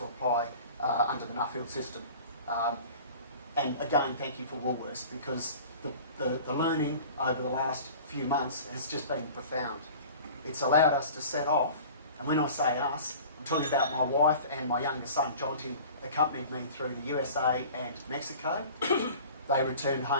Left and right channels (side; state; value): both; inverted; correlation -0.42